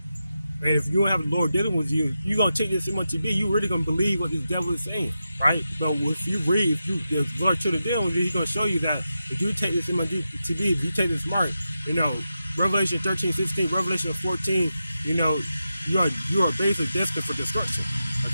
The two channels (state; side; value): inverted; both; correlation -0.89